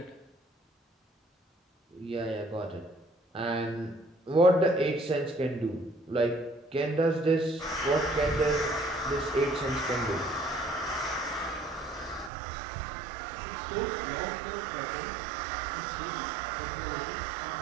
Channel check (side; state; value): left; drops out; at 12.3 s